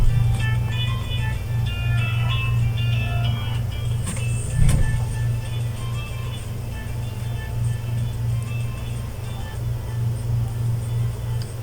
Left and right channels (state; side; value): identical; both; correlation 1.00